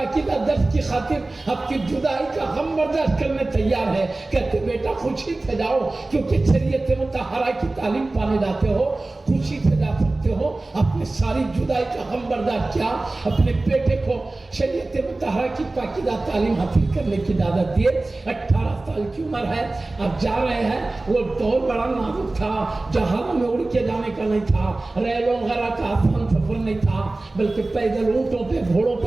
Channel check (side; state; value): left; quieter; 3.0 dB